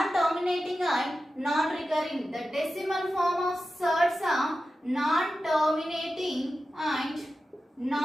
and non-recurring. The decimal form of surds are non-terminating and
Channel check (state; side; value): normal; both; correlation 0.93